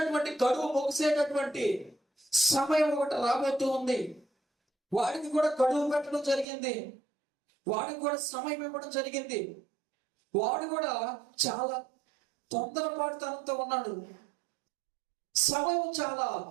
గడువు ముగిసేటటువంటి సమయం ఒకటి రాబోతూ ఉంది. వాడికి కూడా గడువు పెట్టడం జరిగింది, వాడికి కూడా సమయం ఇవ్వడం జరిగింది. వాడు కూడా చాలా తొందరపాటుతనంతో ఉన్నాడు. సమయం చాలా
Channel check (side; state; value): left; drops out; at 6.5 s